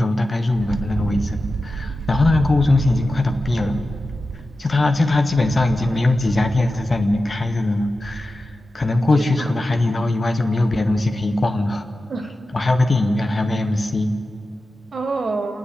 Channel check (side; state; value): both; normal; correlation 0.93